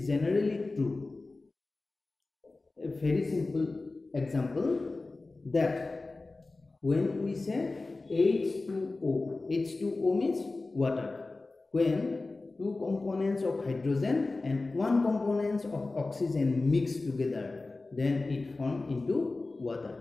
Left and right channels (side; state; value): right; quieter; 3.4 dB